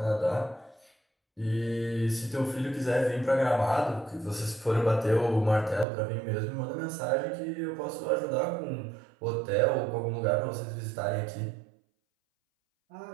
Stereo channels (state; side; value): drops out; left; at 5.9 s